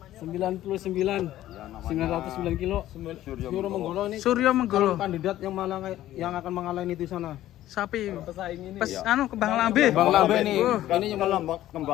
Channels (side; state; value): right; quieter; 13.8 dB